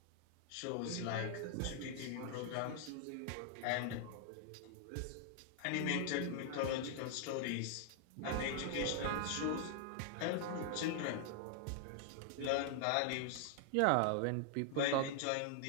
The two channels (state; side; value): different; both; correlation 0.00